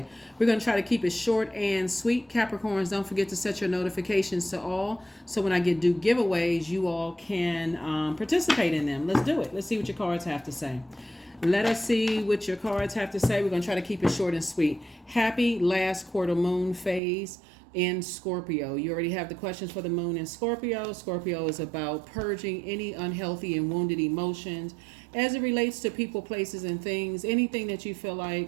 We're going to try to keep it short and sweet. Capricorns, don't forget to set your notifications to all, so when I do giveaways, you all can participate in them. Let's do it. Let's see what your cards have to say. Let us see what your cards have to say. We're going to try to keep it short and sweet. Happy last quarter moon phase in Scorpio. You already have the questions for the moon in Scorpio. Scorpio is about purging any unhealthy and wounded emotions as it relates to people, places, and things. Anything that you feel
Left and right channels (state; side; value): drops out; left; at 17.0 s